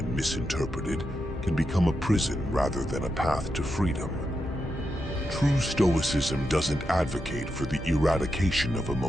misinterpreted, can become a prison rather than a path to freedom. True Stoicism doesn't advocate for the eradication of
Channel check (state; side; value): normal; both; correlation 0.86